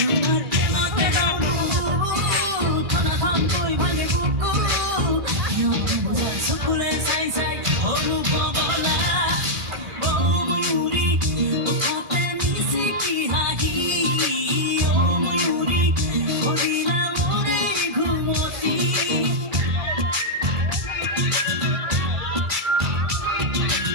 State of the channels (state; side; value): late; left; 1.5 ms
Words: প্রেমতে ডুবো থানা থাম কই ভাঙে বুকু সকলে চাই চাই অনুপগলা ও ময়ূরী উঠাতে মিছে কি হাহি ও ময়ূরী হরিণা মোরে ঘুমতি